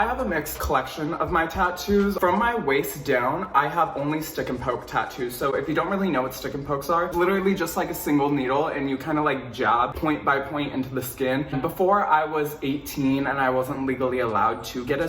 have a mixed collection of my tattoos. From my waist down, I have only stick and poke tattoos. So if you don't really know what stick and pokes are, literally just like a single needle and you kind of like jab point by point into the skin. Before I was 18 and I wasn't legally allowed to get a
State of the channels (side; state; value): both; identical; correlation 1.00